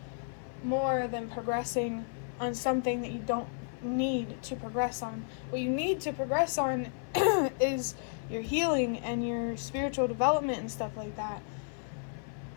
more than progressing on something that you don't need to progress on. What you need to progress on is your healing and your spiritual development and stuff like that.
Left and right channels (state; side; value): silent; right; 56 dB below the other